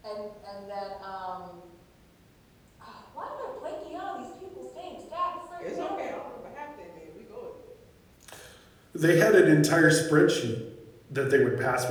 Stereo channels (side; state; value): both; identical; correlation 1.00